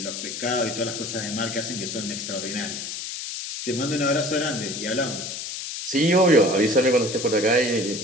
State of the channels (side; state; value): left; noise; hiss, 6 dB below the sound